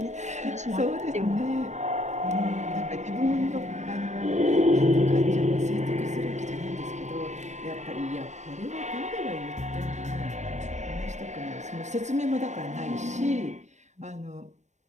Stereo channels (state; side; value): late; left; 0.34 ms